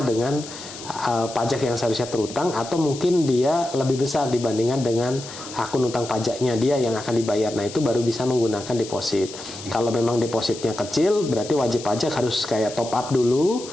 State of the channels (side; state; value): left; noise; hiss, 13 dB below the sound